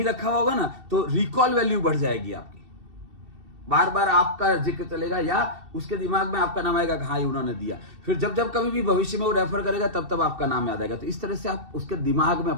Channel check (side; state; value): left; late; 2.7 ms